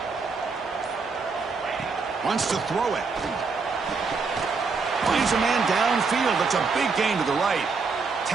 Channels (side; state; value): left; quieter; 4.6 dB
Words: Wants to throw it. Finds a man downfield. It's a big gain to the right.